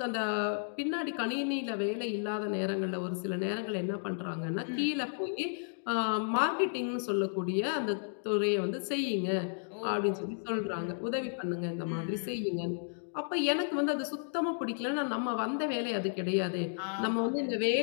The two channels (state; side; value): silent; right; digital silence